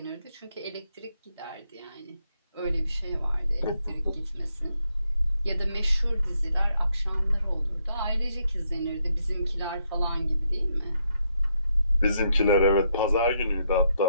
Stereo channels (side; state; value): both; inverted; correlation -0.77